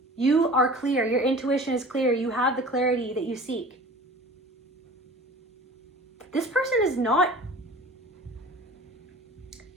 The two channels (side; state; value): both; normal; correlation 0.42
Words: You are clear. Your intuition is clear. You have the clarity that you seek. This person is not